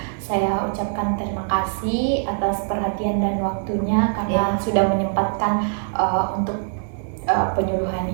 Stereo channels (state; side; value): silent; left; 64 dB below the other